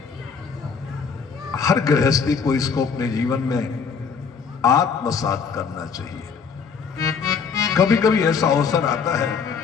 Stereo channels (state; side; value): quieter; right; 5.9 dB